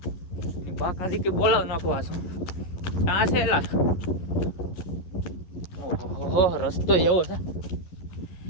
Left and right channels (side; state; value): right; late; 11 ms